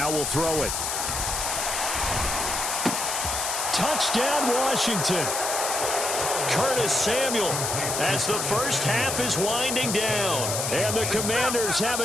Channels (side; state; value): left; noise; hiss, 1 dB below the sound